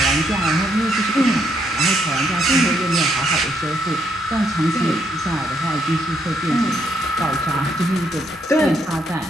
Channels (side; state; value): both; normal; correlation 0.74